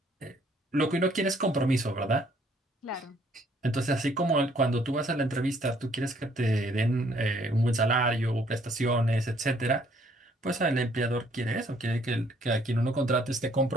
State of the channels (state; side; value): normal; both; correlation 0.64